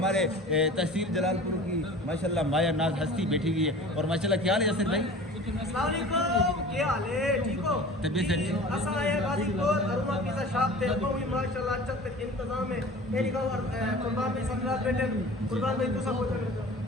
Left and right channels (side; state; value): both; normal; correlation 0.40